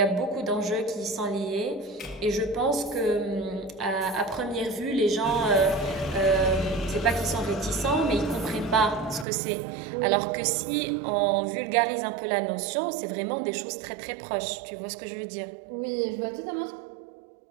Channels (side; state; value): left; drops out; at 9.2 s